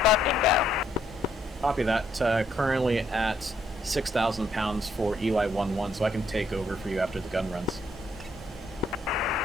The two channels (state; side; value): normal; both; correlation 0.71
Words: bingo. Copy that. Currently at 6,000 pounds for Eli 1-1, so I can take over for you after the gun runs.